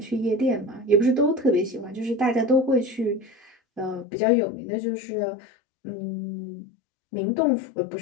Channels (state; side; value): drops out; right; at 4.0 s